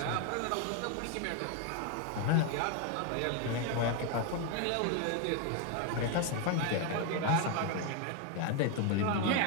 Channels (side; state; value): both; different; correlation 0.01